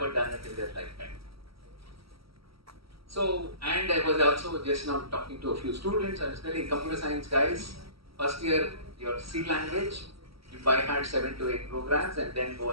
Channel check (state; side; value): late; left; 0.75 ms